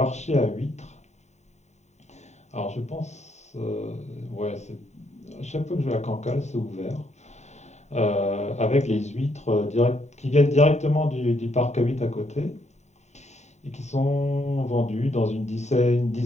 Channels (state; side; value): late; right; 0.33 ms